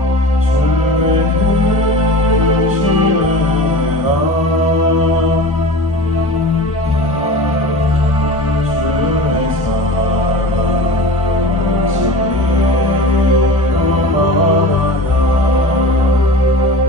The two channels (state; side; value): normal; both; correlation 0.34